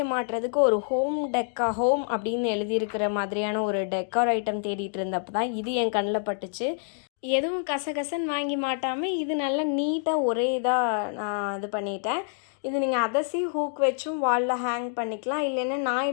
மாட்டுறதுக்கு ஒரு ஹோம் அப்படின்னு எழுதியிருக்கிற மாதிரியான ஒரு டெக்கார் ஐட்டம் தேடிட்டு இருந்தப்போ தான் இது என் கண்ணில் பட்டுச்சு. எதுவும் கசகசன்னு வாங்கி மாட்டாமல் இது நல்லா நீட்டாக ஒரே இதாக நான் இது பண்ணிட்டேன். இது நீங்கள் அதசி ஹூக் வச்சும் வாலில் ஹேங் பண்ணிக்கலாம். இல்லைன்னா நான்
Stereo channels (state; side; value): silent; right; digital silence